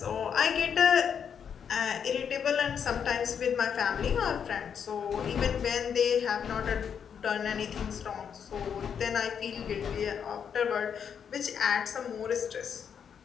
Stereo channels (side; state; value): right; quieter; 7.5 dB